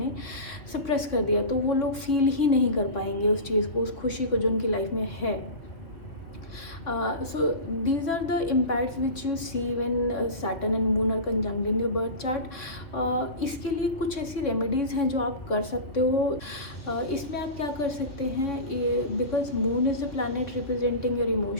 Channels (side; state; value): right; late; 3.4 ms